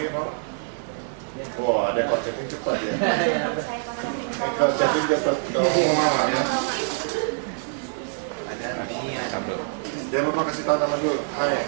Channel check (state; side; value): silent; left; digital silence